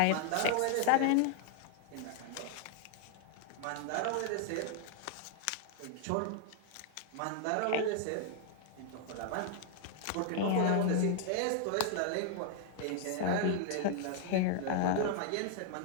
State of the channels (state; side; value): different; both; correlation 0.00